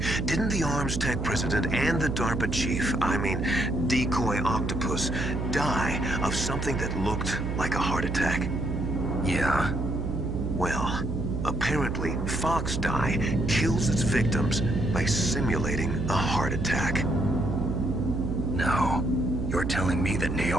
Didn't the Arms Tech president and the DARPA chief, I mean, Decoy Octopus, die of something that looked like a heart attack? Yeah. Well, apparently Fox Dye kills its victims by simulating a heart attack. No. You're telling me that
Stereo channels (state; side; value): noise; right; hum, 3 dB below the sound